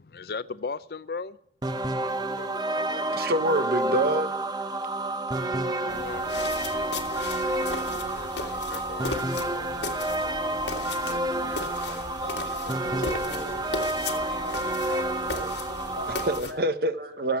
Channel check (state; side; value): normal; both; correlation 0.25